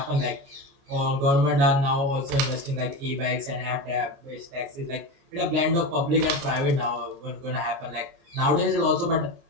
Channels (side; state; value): left; late; 29 ms